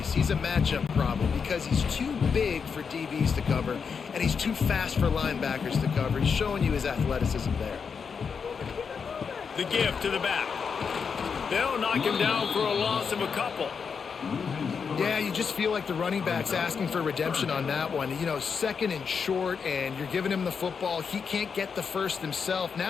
He's a matchup problem because he's too big for DBs to cover, and he's too fast for linebackers to cover. He's showing you his athleticism there. The give to the back. They'll knock him down for a loss of a couple. Yeah, you just feel like the running back's asking for redemption on that one. You know, second and short, and you're giving him the football. He can't get the first himself.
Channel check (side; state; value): right; quieter; 6.0 dB